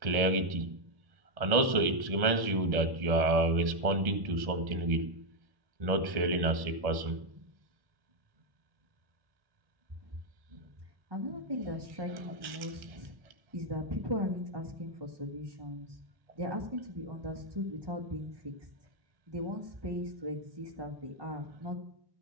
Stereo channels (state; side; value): late; left; 1.7 ms